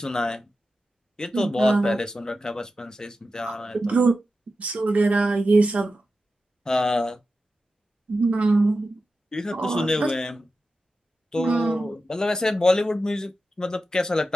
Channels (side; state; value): both; normal; correlation 0.92